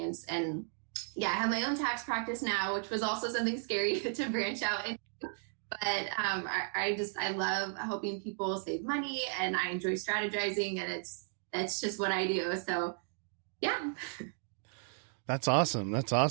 And yeah, I have my own tax practice now, which was also something scary to branch out into. But I love helping people save money, and I enjoy strategizing, and that's just what I do. So yeah. That's awesome. That's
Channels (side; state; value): left; silent; 55 dB below the other